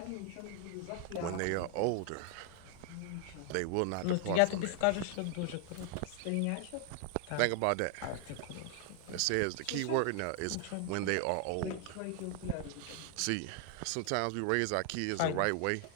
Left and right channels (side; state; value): both; different; correlation 0.00